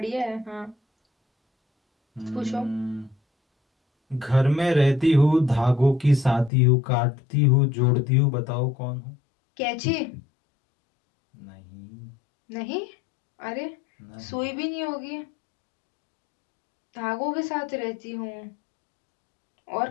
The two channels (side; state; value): right; drops out; at 6.5 s